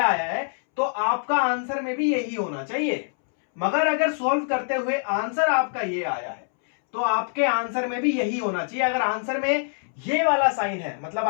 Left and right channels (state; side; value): silent; right; 62 dB below the other